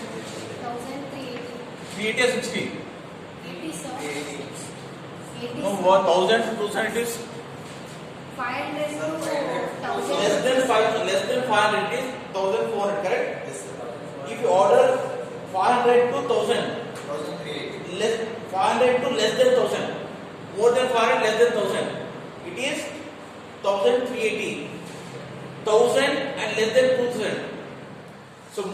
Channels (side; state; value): both; identical; correlation 1.00